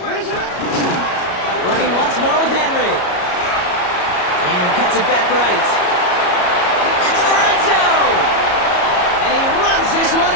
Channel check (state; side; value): late; right; 34 ms